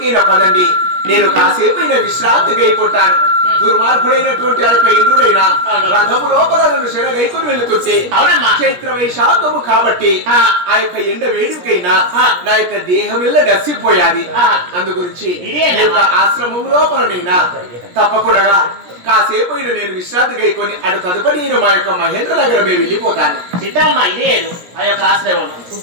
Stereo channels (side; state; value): left; late; 17 ms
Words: పదండి. నేను కాసేపైనా విశ్రాంతి గైకుంటాను. దుర్మార్గుడైనటువంటి ఆ యొక్క ఇంద్రుడైన రథము లోపల నన్ను శరగైకొని వెళుతుంటే చైత్ర వైశాఖము కాబట్టి ఆ యొక్క ఎండ వేడికైనా నా యొక్క దేహమిల్ల గసిపోయాది. అందు గురించి ఆశ్రమం లోపలనైనా తప్పకుండా కాసేపు నేను విశ్రాంతి గైకొని అటు తదుపరి నేను మా యొక్క మహేంద్ర నగరమే వెళ్ళిపోతాను. సీతమ్మ ఇదే ఆ యొక్క ఆశ్రమం